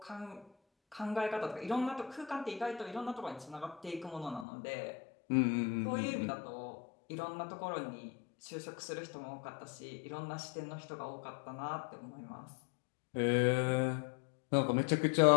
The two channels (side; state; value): right; drops out; at 4.5 s